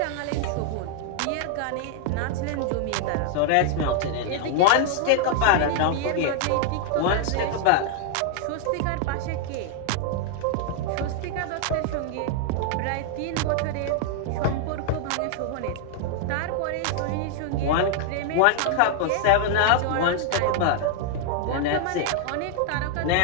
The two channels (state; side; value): different; both; correlation 0.00